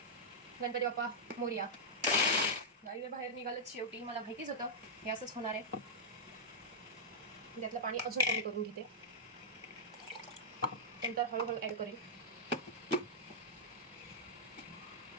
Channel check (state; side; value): normal; both; correlation -0.07